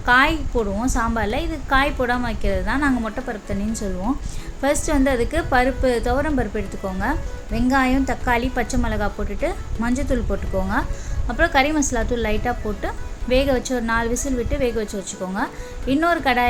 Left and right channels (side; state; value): both; identical; correlation 1.00